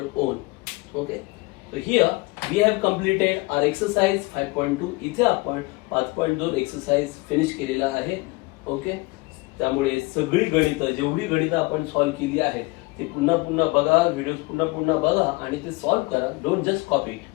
own. Okay, so here we have completed our exercise 5.2. इथे आपण 5.2 एक्सरसाइज फिनिश केलेला आहे. ओके, त्यामुळे सगळी गणितं, जेवढी गणितं आपण सॉल्व्ह केली आहेत ती पुन्हा पुन्हा बघा, व्हिडिओज पुन्हा बघा आणि ते सॉल्व्ह करा. Don't just copy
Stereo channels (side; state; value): right; quieter; 24.6 dB